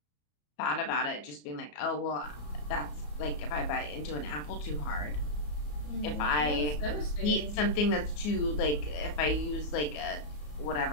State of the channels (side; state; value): right; late; 34 ms